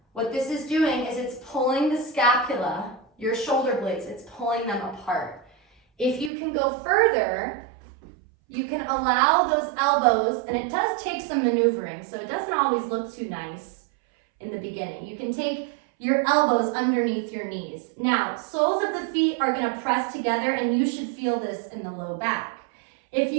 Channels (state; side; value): drops out; left; at 6.3 s